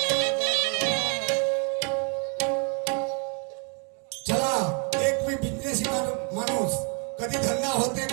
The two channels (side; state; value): left; quieter; 38.1 dB